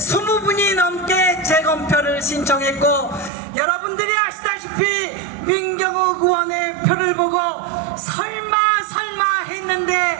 넘게 재검표를 신청했고, 여러분들이 아시다시피 민경욱 의원의 표를 보고 설마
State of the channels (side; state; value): left; drops out; at 3.3 s